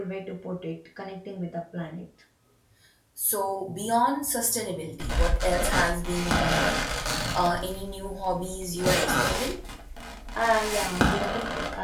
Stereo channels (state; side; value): identical; both; correlation 1.00